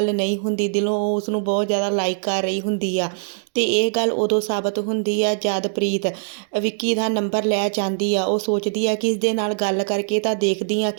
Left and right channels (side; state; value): left; silent; digital silence